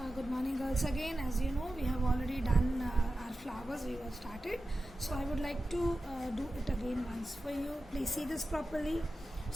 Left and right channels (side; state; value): both; normal; correlation 0.93